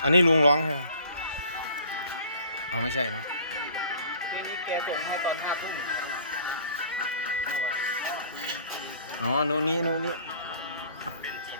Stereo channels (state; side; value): inverted; both; correlation -0.51